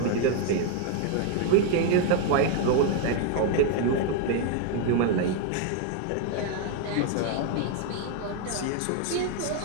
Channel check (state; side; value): different; both; correlation 0.01